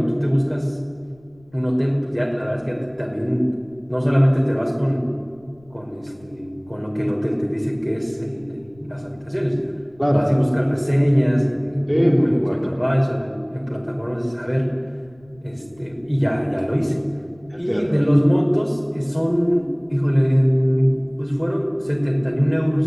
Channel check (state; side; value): noise; left; rumble, 29 dB below the sound